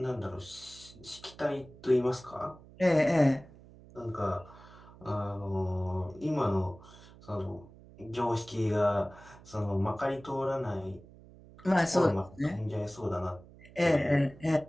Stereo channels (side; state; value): right; noise; hum, 21 dB below the sound